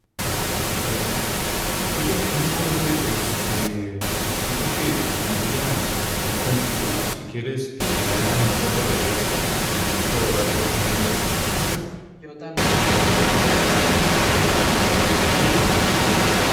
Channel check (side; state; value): both; identical; correlation 1.00